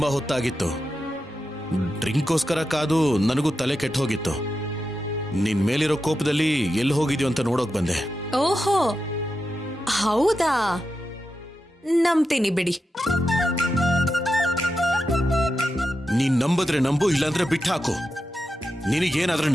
ಹೊತ್ತಾಗಿತ್ತು. ಡ್ರಿಂಕ್ಗೋಸ್ಕರ ಕಾದು ನನಗೂ ತಲೆ ಕೆಟ್ಟು ಹೋಗಿತ್ತು. ನಿನ್ ಮೇಲಿರೋ ಕೋಪದಲ್ಲಿ ಎಲ್ಲಿ ಹೋಗಿದ್ಯೋ ಅಂತ ನೋಡೋಕ್ ಬಂದೆ. ಓಹೋ ಹೌದಾ, ನಂಬ್ತೀನಿ ಬಿಡಿ. ನೀನ್ ನಂಬುದ್ರೆ ನಂಬು, ಇಲ್ಲಾಂದ್ರೆ ಬಿಟ್ಟು ಹಾಕು. ನಿನಗೇನಾದ್ರೆ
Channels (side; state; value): both; normal; correlation 0.89